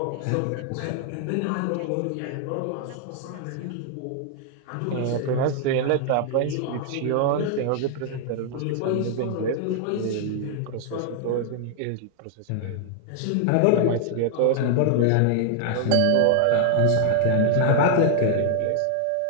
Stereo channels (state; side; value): different; both; correlation 0.00